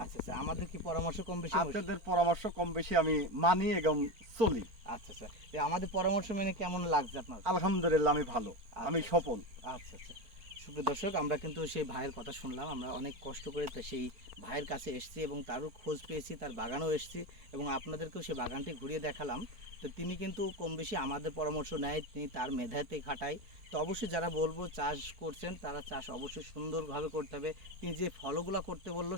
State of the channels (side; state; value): left; late; 4.4 ms